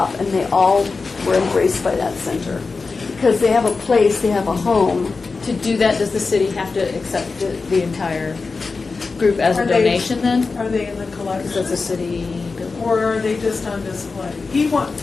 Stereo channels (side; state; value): right; quieter; 4.2 dB